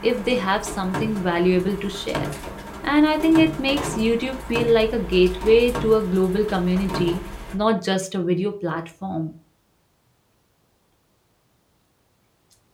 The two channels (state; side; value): identical; both; correlation 1.00